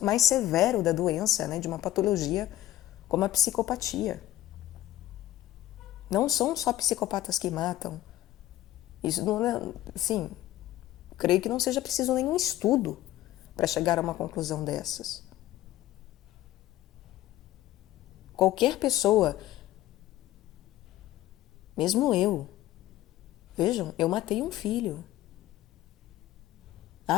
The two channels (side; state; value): right; quieter; 14.5 dB